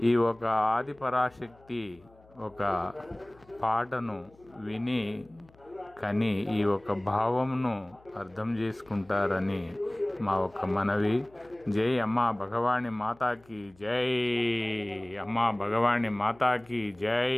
ఈ ఒక ఆదిపరాశక్తి ఒక పాటను విని కానీ ఈ ఒక భావమును అర్థం చేసుకుంటారని మా ఒక మనవి. జై అమ్మా భగవాని మాతాకి జై, అమ్మా భగవాని మాతాకి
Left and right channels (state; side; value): noise; left; hum, 28 dB below the sound